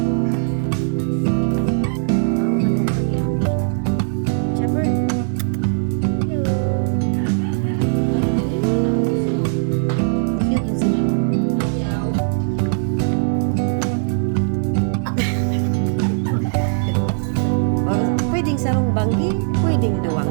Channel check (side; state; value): left; silent; digital silence